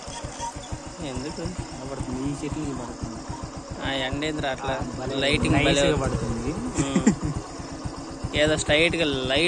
ఎందుకు నిలబడుతుంది? ఈ చెట్లు పడుతుంది. ఎండేంద్ర అట్లా లైటింగ్ పడుతుంది. ఏదో స్ట్రైట్గా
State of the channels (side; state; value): both; identical; correlation 1.00